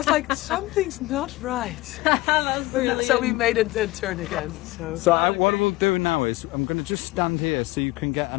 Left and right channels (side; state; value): right; quieter; 19.8 dB